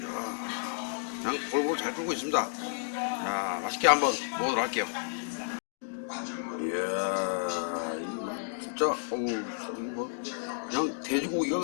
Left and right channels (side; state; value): right; silent; digital silence